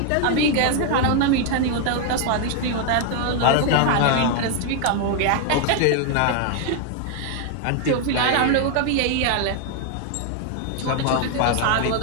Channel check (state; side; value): different; both; correlation 0.00